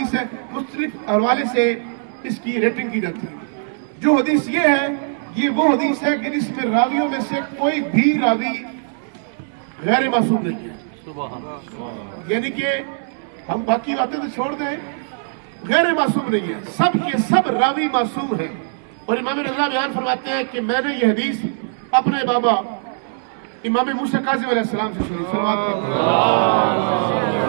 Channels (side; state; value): left; silent; digital silence